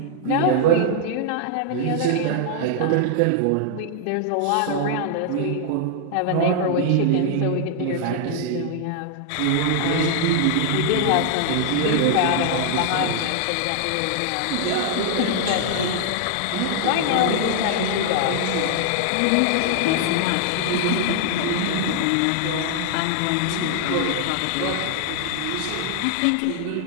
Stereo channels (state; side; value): different; both; correlation 0.00